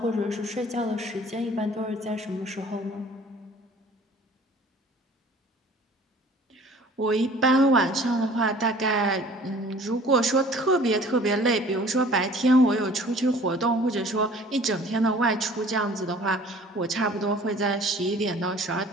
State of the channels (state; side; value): normal; both; correlation 0.50